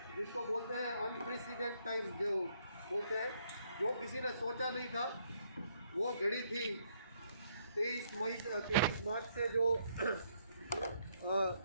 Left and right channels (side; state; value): both; inverted; correlation -0.71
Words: जिसको बोलते हैं अनप्रेसिडेंट टाइम, जो बोलते हैं, जो किसी ने सोचा नहीं था, वो घड़ी थी 23 मार्च से जो